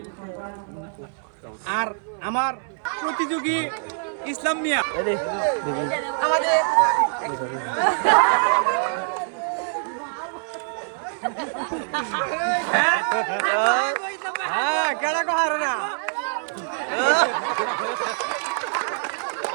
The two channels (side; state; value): left; silent; 62 dB below the other